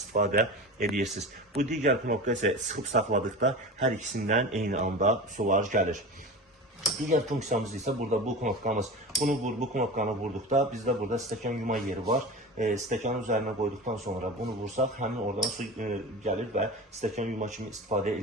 edirsiniz. Bu digər knopka isə sıxıb saxladıqda hər ikisindən eyni anda sular gəlir. Digər funksiyamız isə burada bu knopkamız. Bu knopkanı vurduqda bizdə burada stəkan yuma yeri var. Stəkanın üzərinə qoyduqdan sonra bunu vursaq həmin oradan su gəlir və stəkan yuma kimi istifadə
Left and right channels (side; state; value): both; normal; correlation 0.30